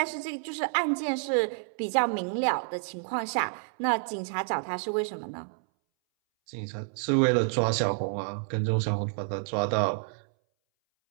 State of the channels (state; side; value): silent; left; 59 dB below the other